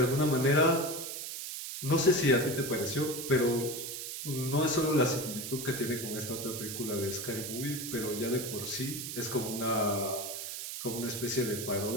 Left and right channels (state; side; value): noise; right; hiss, 6 dB below the sound